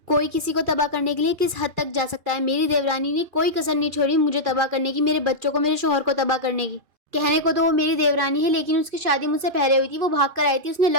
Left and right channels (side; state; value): left; late; 2.4 ms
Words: कोई किसी को तबाह करने के लिए किस हद तक जा सकता है। मेरी देवरानी ने कोई कसर नहीं छोड़ी मुझे तबाह करने की, मेरे बच्चों को, मेरे शौहर को तबाह करने की। कहने को तो वो मेरी देवरानी है, लेकिन उसकी शादी मुझसे पहले हुई थी। वो भाग कर आई थी, उसने